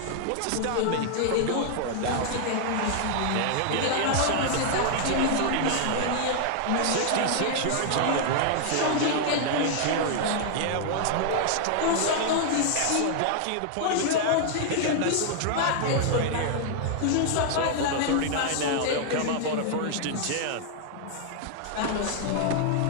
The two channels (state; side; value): different; both; correlation 0.00